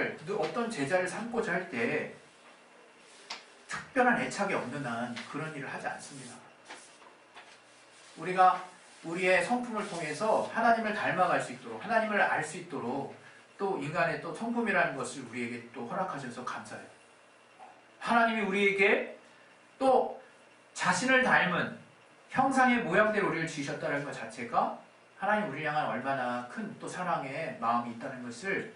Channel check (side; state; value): both; identical; correlation 1.00